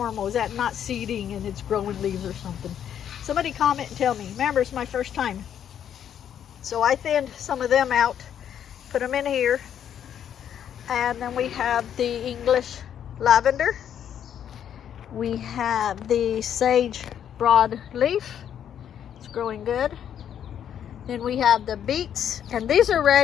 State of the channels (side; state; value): right; quieter; 9.4 dB